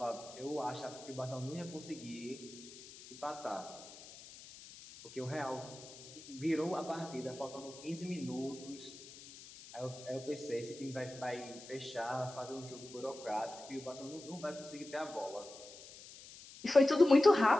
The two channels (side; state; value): left; noise; hiss, 17 dB below the sound